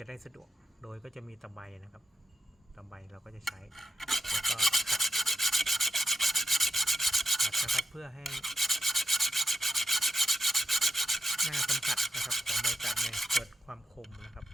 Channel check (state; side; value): normal; both; correlation 0.87